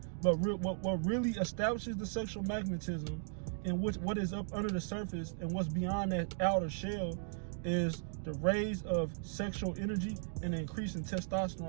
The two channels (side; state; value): left; silent; digital silence